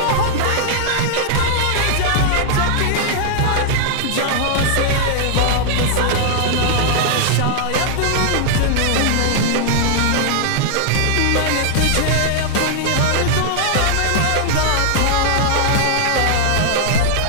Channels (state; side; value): different; both; correlation -0.01